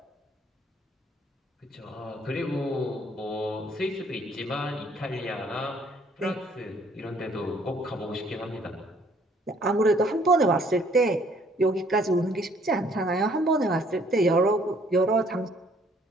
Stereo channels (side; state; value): both; normal; correlation 0.61